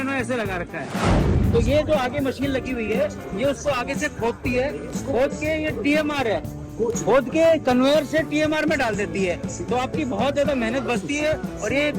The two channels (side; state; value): both; identical; correlation 1.00